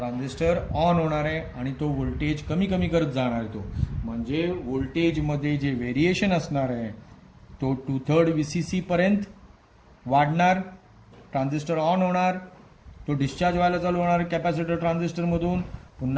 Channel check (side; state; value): both; identical; correlation 1.00